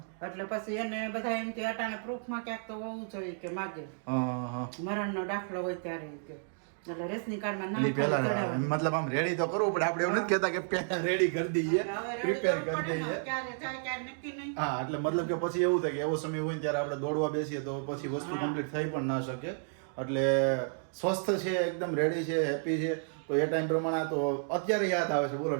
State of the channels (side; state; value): left; silent; digital silence